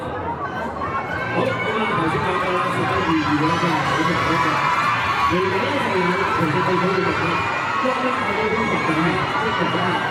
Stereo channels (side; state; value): both; identical; correlation 1.00